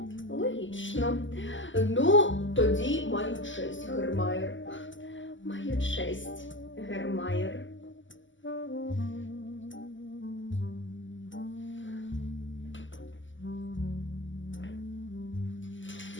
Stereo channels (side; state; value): right; late; 0.55 ms